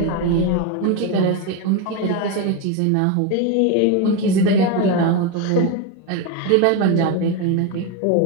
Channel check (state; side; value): different; both; correlation 0.03